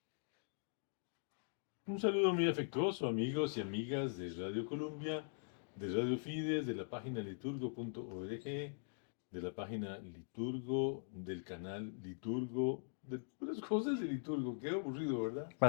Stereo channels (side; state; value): right; silent; digital silence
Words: Un saludo muy afectuoso, amigos y amigas de Radio Columbia, de Radio Fides, de la página liturgo.org, de la página Liturgo, del canal Liturgo, de puras cosas de Liturgo. Qué aburrido, ¿verdad?